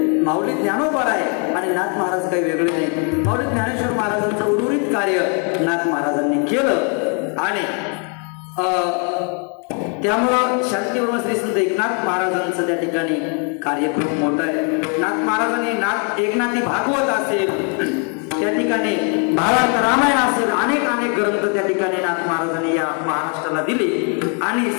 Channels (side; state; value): right; quieter; 38.8 dB